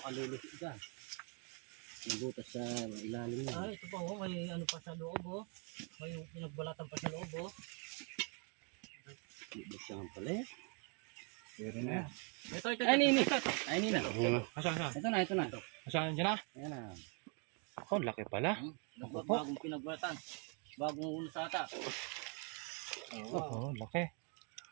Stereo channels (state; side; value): quieter; left; 37.0 dB